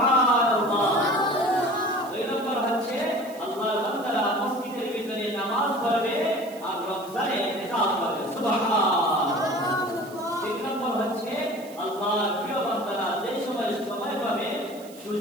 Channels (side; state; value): right; noise; hiss, 20 dB below the sound